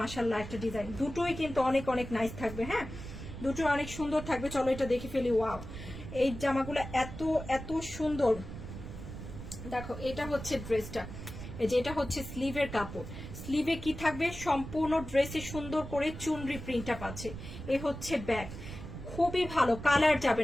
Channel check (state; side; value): noise; right; rumble, 10 dB below the sound